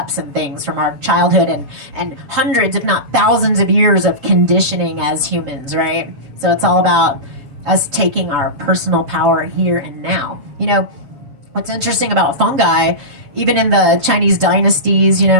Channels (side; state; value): left; late; 7.1 ms